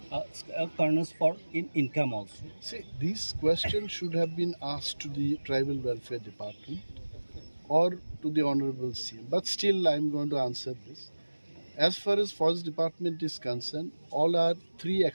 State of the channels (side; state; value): both; inverted; correlation -1.00